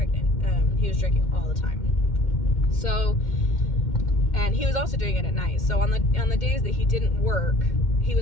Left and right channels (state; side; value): late; right; 2.1 ms